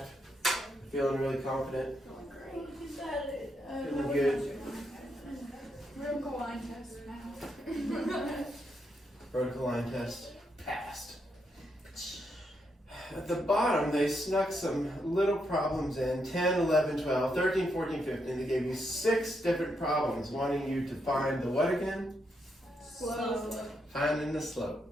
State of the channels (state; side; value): normal; both; correlation 0.80